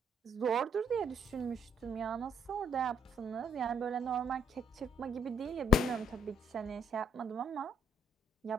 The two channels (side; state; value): both; normal; correlation 0.71